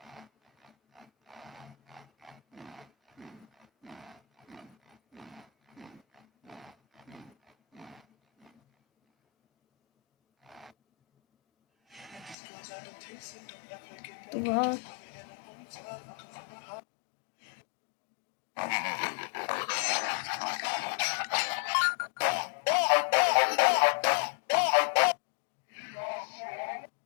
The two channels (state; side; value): drops out; right; at 12.4 s